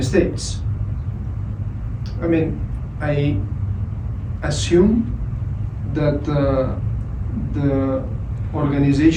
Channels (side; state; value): both; identical; correlation 1.00